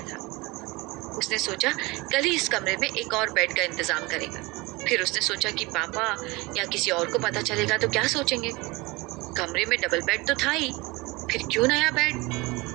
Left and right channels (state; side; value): quieter; left; 23.8 dB